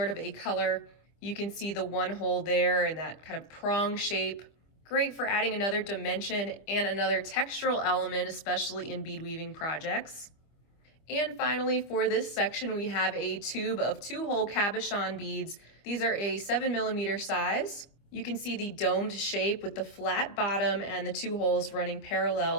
of a color. You can see the one hole there and that kind of prong shape. Great for adding another dimension and another textural element, especially in bead weaving projects. And finally, for this section, we have a tube of 2-hole cabochon beads. These are a 7mm size. You can see the domed shape with the flat bottom and the 2 holes running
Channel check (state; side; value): late; right; 25 ms